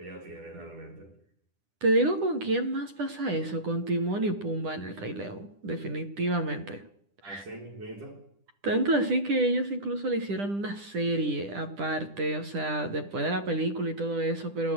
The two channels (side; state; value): left; late; 10 ms